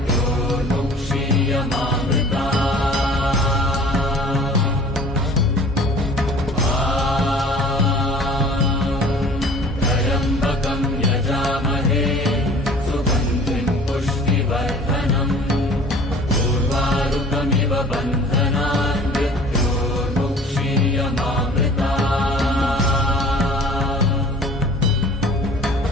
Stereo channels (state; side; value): normal; both; correlation 0.48